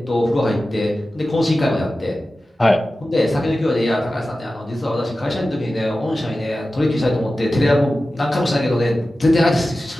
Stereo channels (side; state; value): both; normal; correlation 0.94